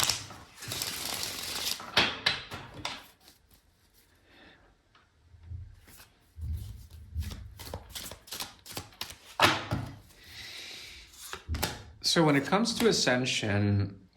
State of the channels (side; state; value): both; identical; correlation 1.00